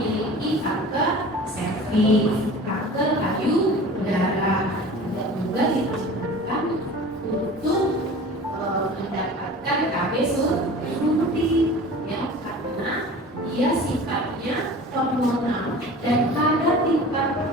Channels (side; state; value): both; normal; correlation 0.40